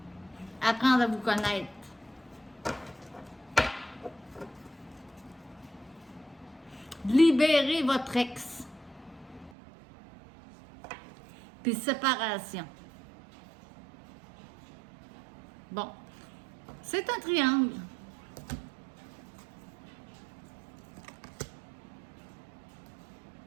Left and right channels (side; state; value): left; drops out; at 9.6 s